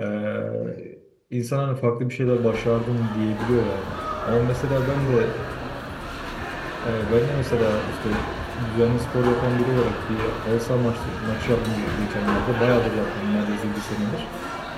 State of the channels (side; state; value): both; identical; correlation 1.00